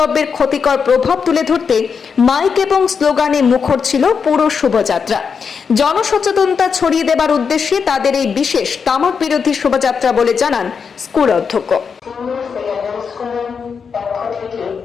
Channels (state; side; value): quieter; right; 6.0 dB